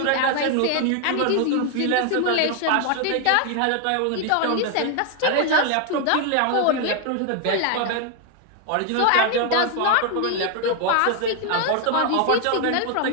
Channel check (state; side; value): different; both; correlation 0.01